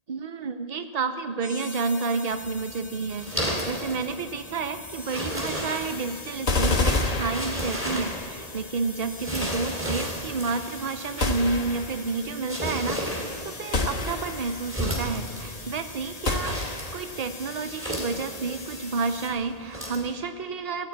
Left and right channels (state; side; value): late; right; 1.8 ms